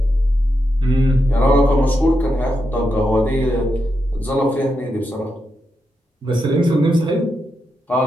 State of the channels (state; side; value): normal; both; correlation 0.85